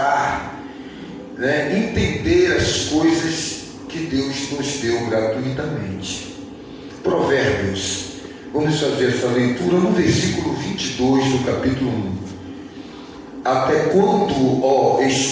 entender as coisas que Deus nos deu gratuitamente. Provérbios. Vamos fazer essa leitura no versículo 22 do capítulo 1. Até quando, ó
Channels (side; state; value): both; identical; correlation 1.00